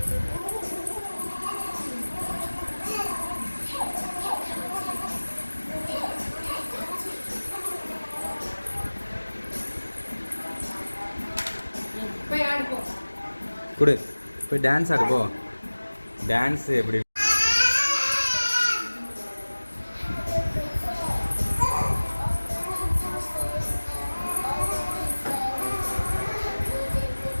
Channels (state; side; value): inverted; both; correlation -1.00